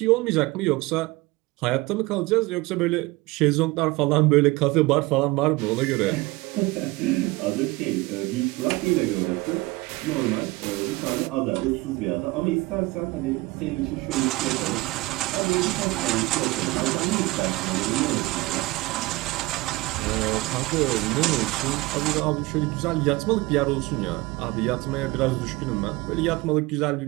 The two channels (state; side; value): quieter; left; 21.5 dB